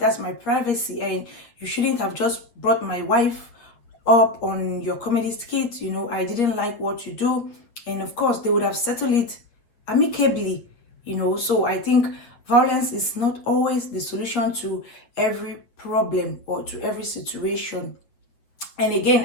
my privacy. And you shouldn't have just brought my wife up on your comedy skit, you know. I didn't like what you do. And of course, they would have settled it amicably, you know. So I think violence is not always the solution to every problem or to every situation. And again,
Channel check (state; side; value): late; right; 8.3 ms